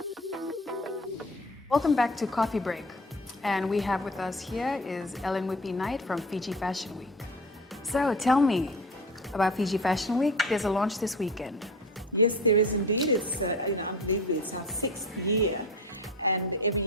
Welcome back to Coffee Break. And we have with us here is Ellen Whippy Knight from Fiji Fashion Week. So tell me about Fiji Fashion Week. There's a launch this weekend. Yes, there is indeed. It's unbelievable. It's our 6th year, and every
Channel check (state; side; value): normal; both; correlation 0.35